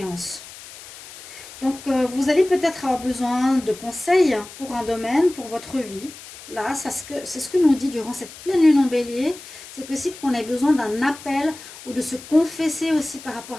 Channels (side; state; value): left; noise; hiss, 16 dB below the sound